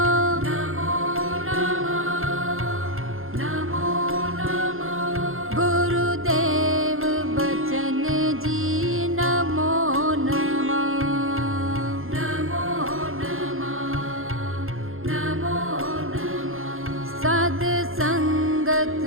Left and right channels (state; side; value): late; left; 0.61 ms